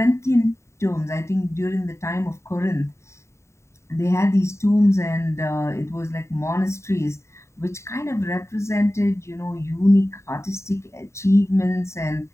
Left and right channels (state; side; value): late; right; 0.14 ms